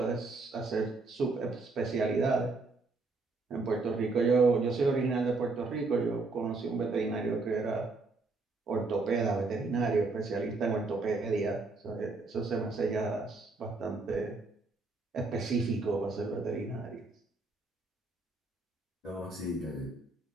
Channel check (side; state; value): left; quieter; 3.7 dB